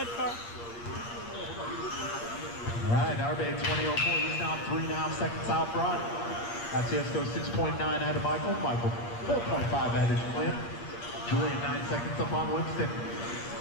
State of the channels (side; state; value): right; late; 8.7 ms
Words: car. All right, Narbe 20.04, he's now 3.5 seconds out front. That's Cisco 6.9 ahead of Michael. Michael 4.5 ahead of Julian. Julian 9 seconds up on Winston.